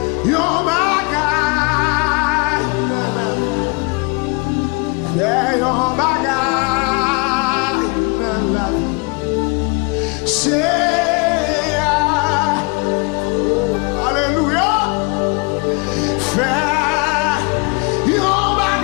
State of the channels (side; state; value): right; quieter; 31.0 dB